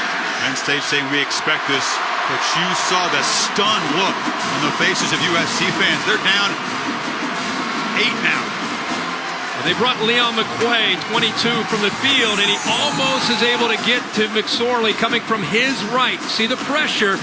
Penn State saying we expect this, but you saw the stunned look on the faces of USC fans. They're down 8 now. They brought Leon McQuay, 22, from the field, and he almost is able to get to McSorley coming from his right. See the pressure.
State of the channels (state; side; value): identical; both; correlation 1.00